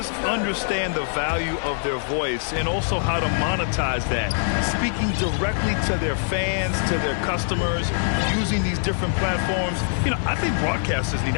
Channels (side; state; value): right; silent; 63 dB below the other